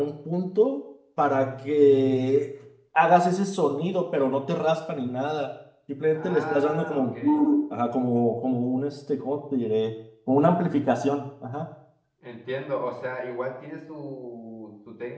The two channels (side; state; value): both; identical; correlation 1.00